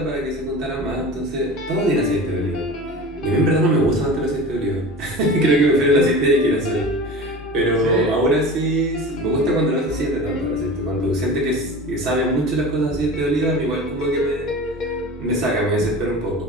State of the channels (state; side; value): normal; both; correlation 0.35